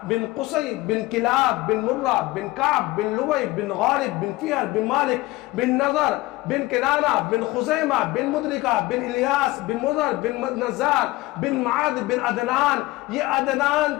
بن قصی بن کلاب بن مرہ بن کعب بن لوی بن غالب بن فیہر بن مالک بن نظر بن کنانہ بن خزیمہ بن مدرکہ بن الیاس بن مضر بن نزار بن معاذ بن عدنان۔ یہ عدنان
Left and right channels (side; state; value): right; quieter; 19.5 dB